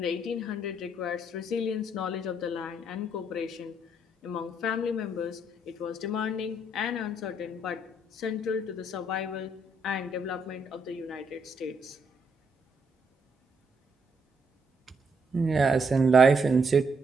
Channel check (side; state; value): both; normal; correlation 0.74